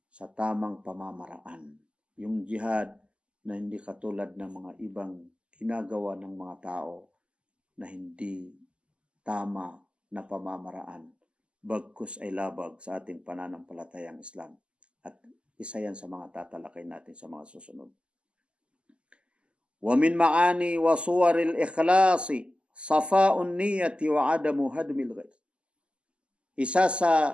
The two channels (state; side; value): late; left; 0.053 ms